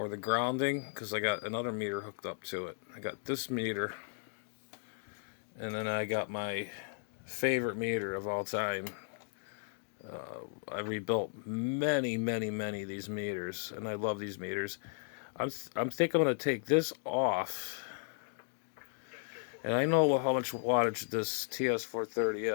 the grounding because I got another meter hooked up to it. I got this meter and then I got my favorite meter of all time. I rebuilt many of these meters and I love these meters. I'm thinking I'm going to take this off. And I know how much wattage this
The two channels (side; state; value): right; silent; digital silence